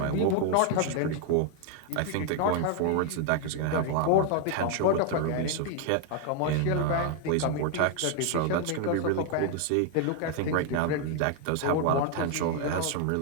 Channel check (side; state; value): both; different; correlation 0.00